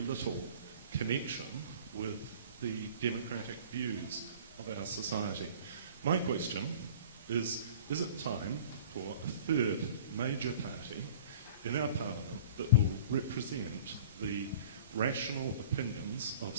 little connection with the democratic views of our society. My question is it time for a third major party in our Parliament that will represent the rational opinions of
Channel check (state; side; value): inverted; both; correlation -0.44